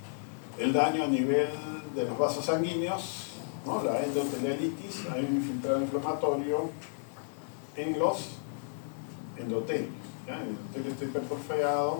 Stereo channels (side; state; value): right; silent; digital silence